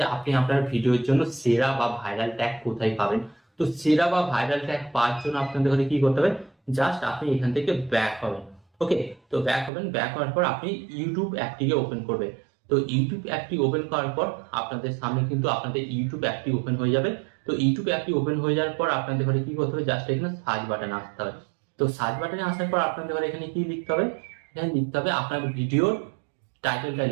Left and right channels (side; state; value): left; drops out; at 9.7 s